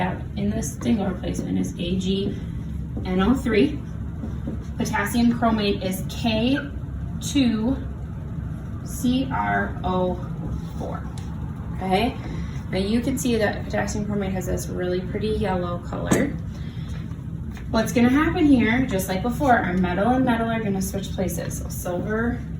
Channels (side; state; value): both; identical; correlation 1.00